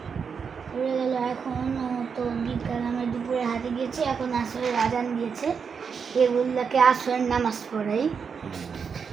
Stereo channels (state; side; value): quieter; left; 6.2 dB